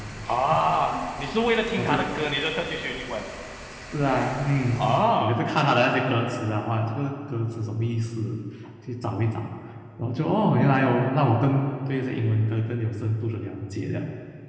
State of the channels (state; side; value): identical; both; correlation 1.00